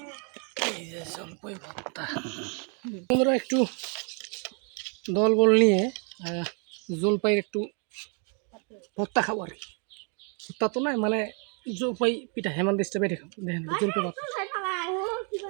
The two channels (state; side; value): quieter; left; 38.9 dB